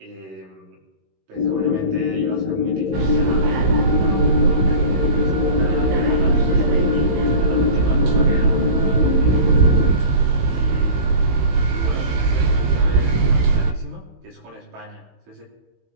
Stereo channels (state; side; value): late; left; 16 ms